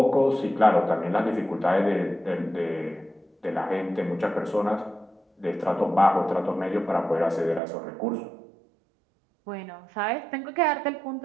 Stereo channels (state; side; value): drops out; left; at 7.6 s